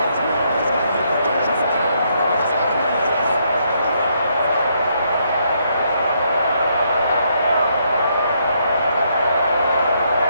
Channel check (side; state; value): both; inverted; correlation -0.74